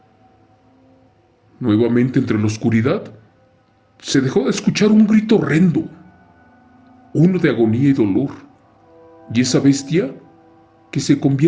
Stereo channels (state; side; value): identical; both; correlation 1.00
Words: Nuevamente entre la oscuridad se dejó de escuchar un grito horrendo, uno de agonía y dolor, y esa bestia que se